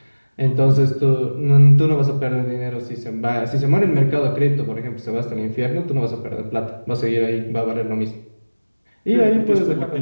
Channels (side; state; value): both; inverted; correlation -1.00